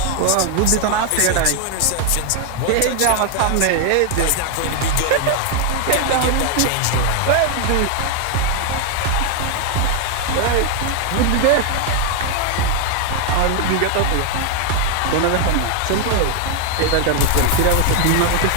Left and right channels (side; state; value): both; different; correlation 0.00